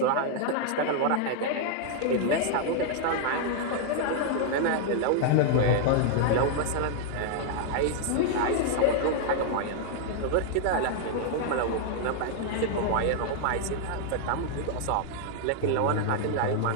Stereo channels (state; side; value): different; both; correlation 0.00